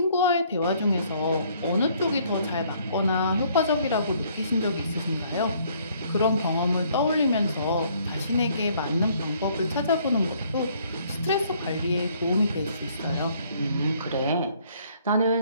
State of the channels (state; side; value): inverted; both; correlation -0.63